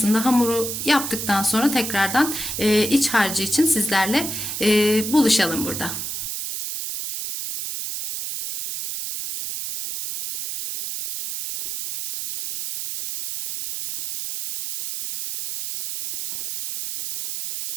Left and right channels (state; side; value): noise; right; hiss, 5 dB below the sound